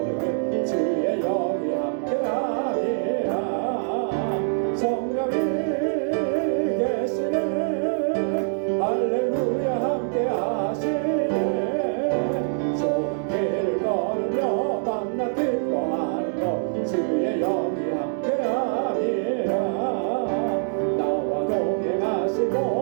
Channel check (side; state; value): left; silent; digital silence